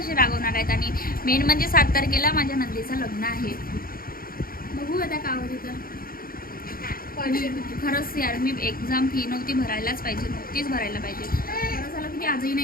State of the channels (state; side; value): late; right; 0.42 ms